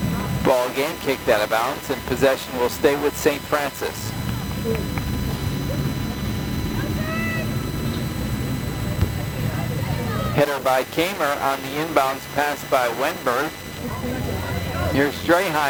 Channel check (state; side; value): identical; both; correlation 1.00